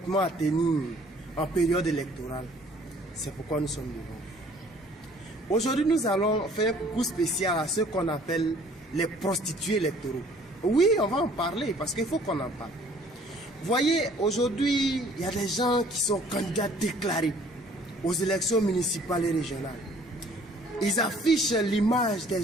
à tenir en période électorale. C'est pourquoi nous sommes devant. Aujourd'hui, nous allons faire un coucou spécial à ceux qu'on appelle les prostituées électoraux. Oui, on va en parler parce qu'il faut qu'on en parle. Voyez, aujourd'hui, il y a des gens qui sont candidats déclarés aux élections municipales et régionales. Ils affichent l'image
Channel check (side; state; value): both; normal; correlation 0.56